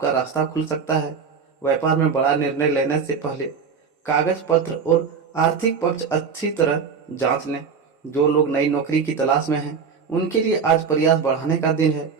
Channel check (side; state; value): left; quieter; 5.9 dB